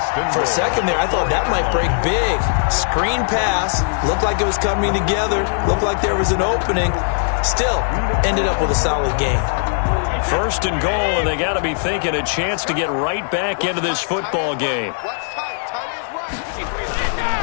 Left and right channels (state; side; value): silent; right; digital silence